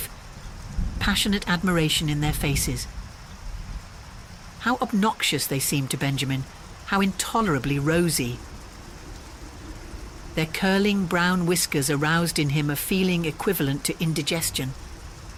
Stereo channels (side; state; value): both; identical; correlation 1.00